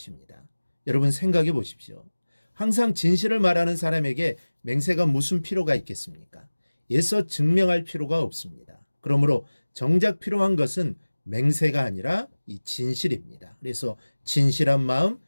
여러분 생각해 보십시오. 항상 진실을 말하는 사람에게 맹세가 무슨 필요가 있겠습니까? 애써 증명할 필요가 없습니다. 그러므로 정작 필요한 것은 맹세가 아니라 이 진실입니다. 그래서 진실한 마음,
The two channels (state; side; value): inverted; both; correlation -1.00